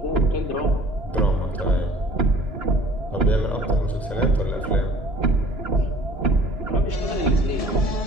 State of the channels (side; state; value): both; normal; correlation 0.51